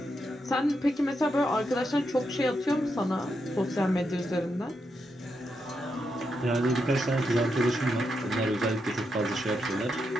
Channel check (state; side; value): normal; both; correlation 0.83